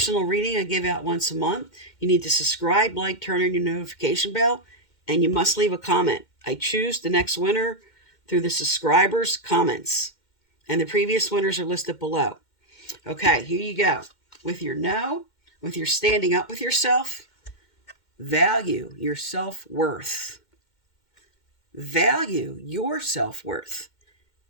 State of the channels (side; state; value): right; late; 2.1 ms